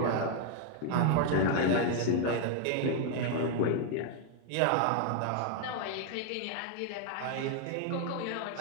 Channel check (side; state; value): both; different; correlation 0.00